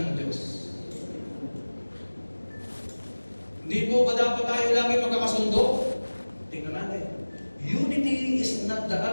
Diyos. Hindi po ba dapat tayo lagi magkakasundo? Tingnan natin. Unity is not the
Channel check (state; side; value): inverted; both; correlation -1.00